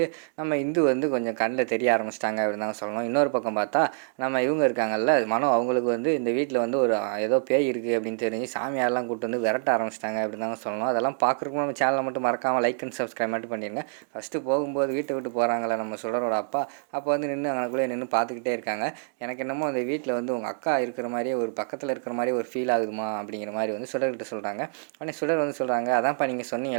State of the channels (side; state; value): left; silent; digital silence